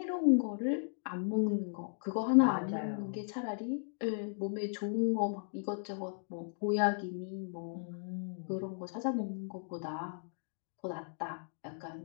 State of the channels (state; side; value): silent; right; digital silence